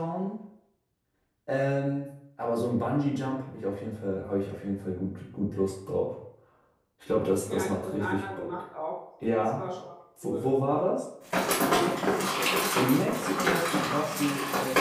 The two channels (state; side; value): identical; both; correlation 1.00